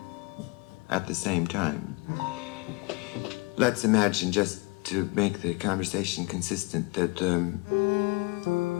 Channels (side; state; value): right; quieter; 27.4 dB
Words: at the same time? Let's imagine, just to make the conversation consistent, that